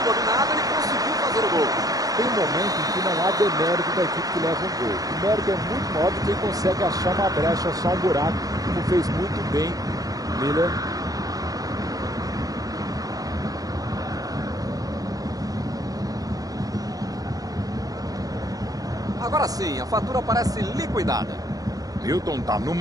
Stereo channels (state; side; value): late; left; 0.18 ms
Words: dominado, ele conseguiu fazer o gol. Tem momento em que não há demérito da equipe que leva um gol. O mérito é muito maior do que quem consegue achar uma brecha, achar um buraco, como fez muito bem Miller. Agora sim, a fatura parece liquidada. Milton tá